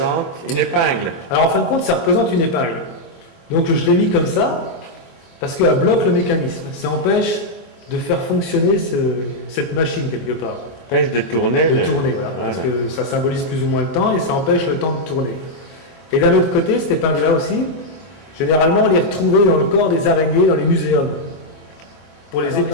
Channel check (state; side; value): late; right; 24 ms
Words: une épingle. Alors en fin de compte, ça représente une épingle. Donc je l'ai mis comme ça, parce qu'elle bloque le mécanisme. Ça empêche de faire fonctionner cette machine quelque part. Empêche de tourner. Tourner, voilà. Parce que ça symbolise plus ou moins le temps et ça empêche le temps de tourner. Et d'un autre côté, cette épingle-là aussi, généralement, on les retrouvait dans le corps des araignées dans les muséums. Pour les